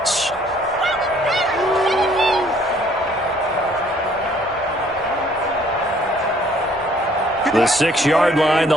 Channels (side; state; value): both; normal; correlation 0.60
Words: The 6-yard line,